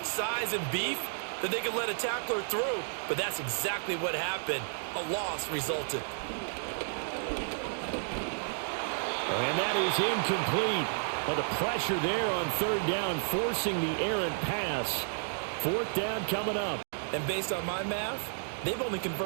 size and beef that they could let a tackler through, but that's exactly what happened. A loss resulted. And that is incomplete. But the pressure there on 3rd down, forcing the errant pass. 4th down coming up. And based on my math, they've only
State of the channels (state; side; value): silent; left; digital silence